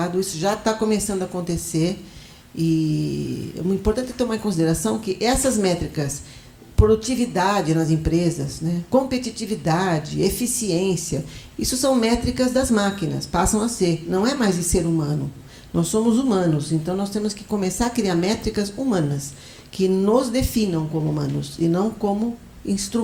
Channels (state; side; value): identical; both; correlation 1.00